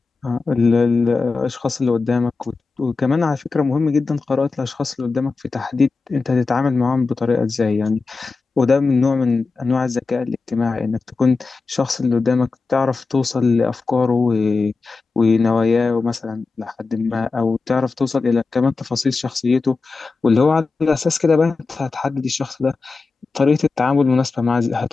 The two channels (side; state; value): right; quieter; 4.1 dB